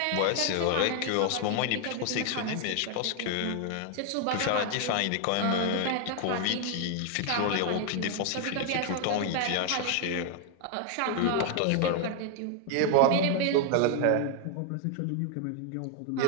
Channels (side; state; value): both; different; correlation 0.00